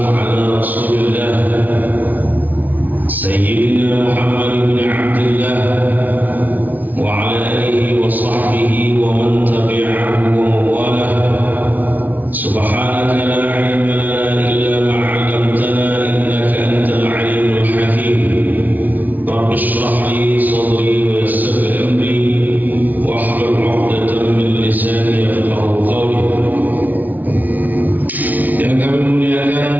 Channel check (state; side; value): late; left; 0.079 ms